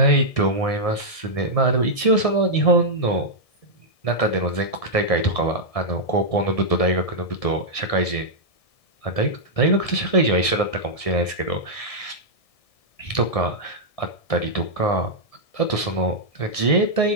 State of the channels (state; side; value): late; right; 1.7 ms